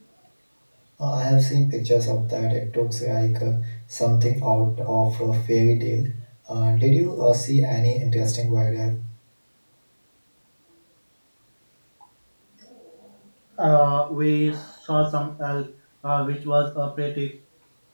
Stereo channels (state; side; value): inverted; both; correlation -1.00